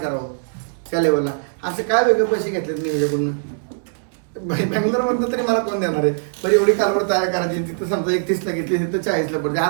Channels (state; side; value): silent; left; digital silence